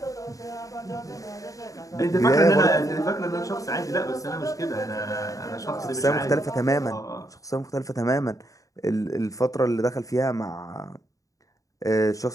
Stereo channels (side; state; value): right; late; 0.16 ms